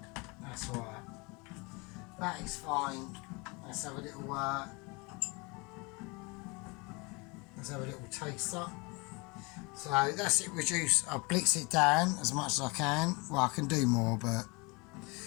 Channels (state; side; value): quieter; right; 28.1 dB